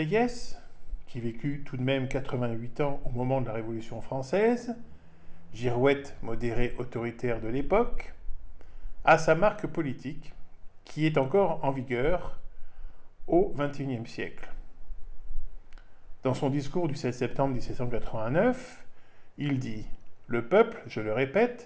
qui vécut tout de même 88 ans au moment de la Révolution française, girouette modéré autoritaire de l'époque, a sa marque politique, qui est encore en vigueur au XXIe siècle. Dans son discours du 7 septembre 1789, il dit « Le peuple, je le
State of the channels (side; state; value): both; identical; correlation 1.00